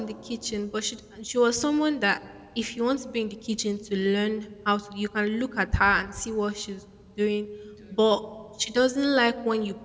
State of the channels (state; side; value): identical; both; correlation 1.00